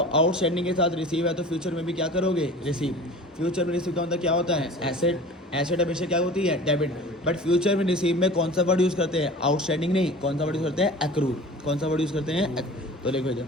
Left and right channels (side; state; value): both; normal; correlation 0.40